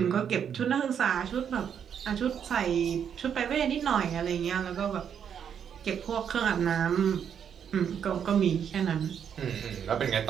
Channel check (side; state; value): left; quieter; 8.1 dB